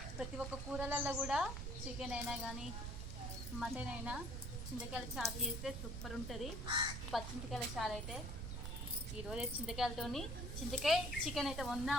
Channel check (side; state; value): right; noise; rumble, 5 dB below the sound